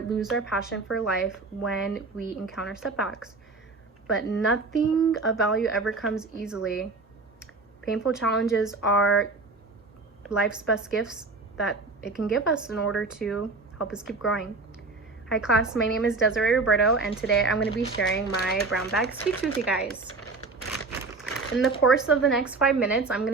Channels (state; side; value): quieter; left; 3.8 dB